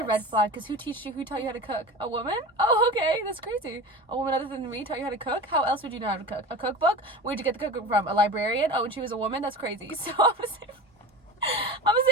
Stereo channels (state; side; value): normal; both; correlation 0.32